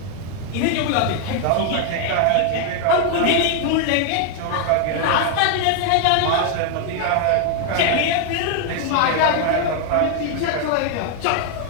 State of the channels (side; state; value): both; different; correlation 0.00